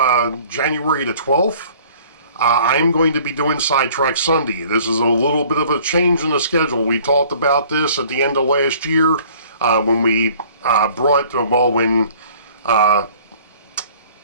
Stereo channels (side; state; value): both; inverted; correlation -0.52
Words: January the 12th, I'm going to be doing Sidetrack Sunday. This is a little bit of a change in the schedule. We talked about this at the end of last year when we when